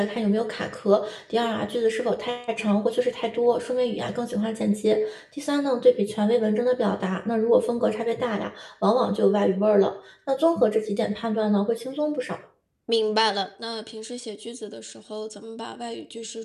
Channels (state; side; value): identical; both; correlation 1.00